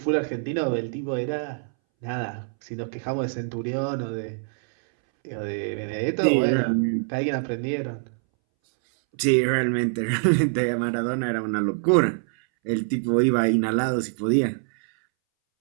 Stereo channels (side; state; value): left; silent; 62 dB below the other